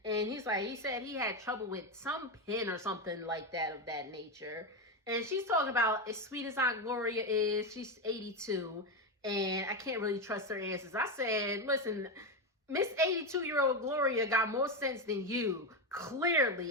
and he said he had trouble with some pin or something like that of that nature. And she's talking about, as sweet as Aunt Gloria is, she's 82, and I can't really trust her answers. I said, listen, Miss 82-year-old Gloria got more sense than you. Clearly,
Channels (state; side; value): normal; both; correlation 0.11